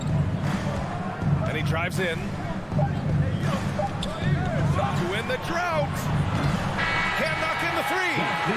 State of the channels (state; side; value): identical; both; correlation 1.00